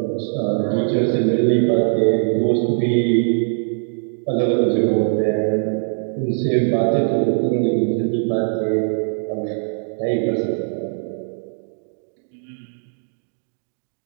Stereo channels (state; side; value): silent; left; digital silence